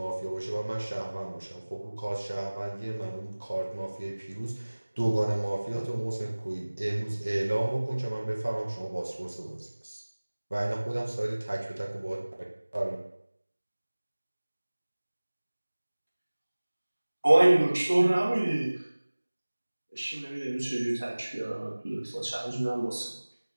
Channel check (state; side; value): inverted; both; correlation -1.00